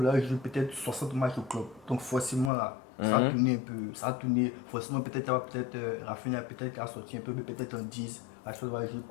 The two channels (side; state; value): right; drops out; at 2.5 s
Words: jouer peut-être 60 matchs au club. Donc, forcément, là, ça a tourné un peu. Ça a tourné. Forcément, peut-être Rafinha peut-être a sorti un peu, mais peut-être en 10. Rashford va jouer